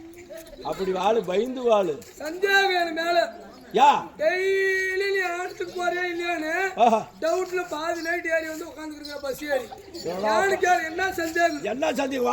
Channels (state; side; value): identical; both; correlation 1.00